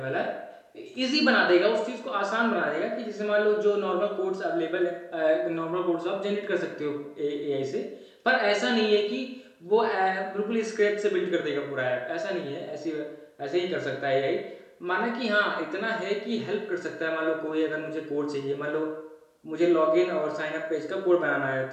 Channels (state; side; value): identical; both; correlation 1.00